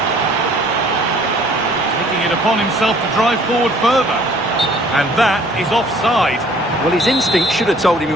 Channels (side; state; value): left; noise; rumble, 30 dB below the sound